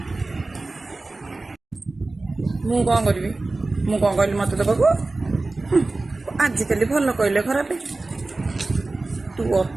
मु कौन करी मु कौन कहली मत दबाक आजिकल भल कहले खराब तू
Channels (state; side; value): quieter; left; 3.3 dB